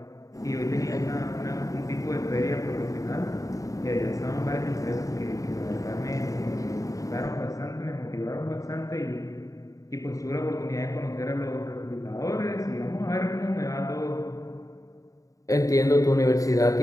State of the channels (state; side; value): late; right; 0.16 ms